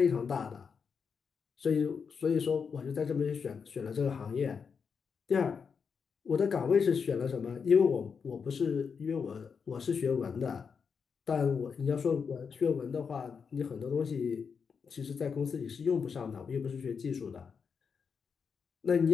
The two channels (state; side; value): quieter; right; 6.0 dB